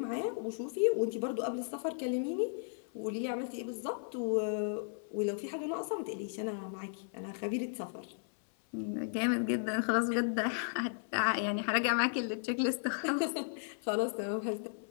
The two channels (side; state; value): right; silent; 54 dB below the other